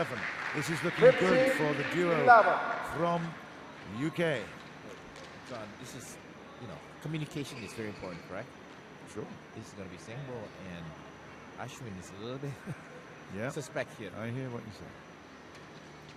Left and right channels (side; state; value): both; identical; correlation 1.00